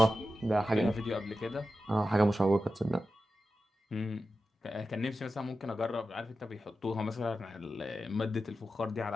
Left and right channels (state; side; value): normal; both; correlation 0.92